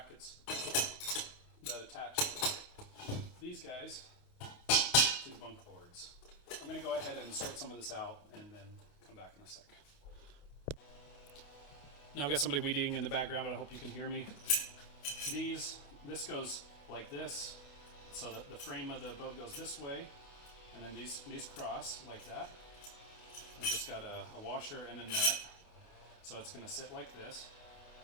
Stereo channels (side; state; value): right; late; 28 ms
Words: that attach these guys to the bunk boards. I'm going to go ahead and sort some of this out and then come back in a sec. Now I've got somebody weeding in the background, but I hope you can hear me. This goes like this, so that the frame of the boat goes this way, and then these cross like that. I've just got a washer and a nut, so it's going to sit like this,